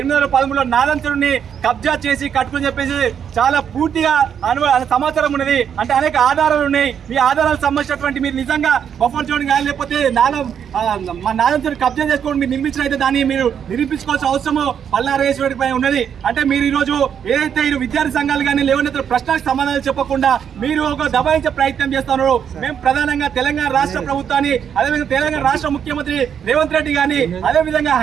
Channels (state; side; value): quieter; left; 8.2 dB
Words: నాదంచుడిని కబ్జా చేసి కట్టుకుని చెప్పేసి చాలా పూర్తిగా సమాచారం ఉన్నది. అంటే అనేక ఆధారాలు ఉన్నాయి. మీ ఆధారాలకు సంబంధించినటువంటి మీరు నిజంగా బఫర్ జోన్ కానీ లేకపోతే నాలం చెరువు కబ్జా చేసుకోవడం మీరు నిర్మించిన అయితే దాన్ని మీరు నిరూపించుకోవాల్సిన అవసరము పల్లారేశ్వరి పై ఉన్నది. అంటే మీరు ఈ రోజు ఏదైతే ఈ విద్యార్థి సంఘాలు కానీ లేవనెత్తిన ప్రశ్నలకు సమాధానాలు చెప్పకుండా మీరు ఒక దబాయించే ప్రయత్నం చేస్తున్నారు. మేము ప్రధానంగా తెలంగాణ రాష్ట్ర ప్రభుత్వాన్ని, అదేవిధంగా తెలంగాణ రాష్ట్ర ముఖ్యమంత్రి రేవంత్ రెడ్డి గాని, అదేవిధంగా